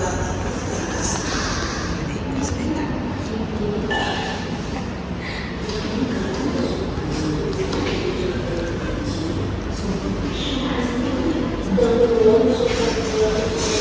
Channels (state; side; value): identical; both; correlation 1.00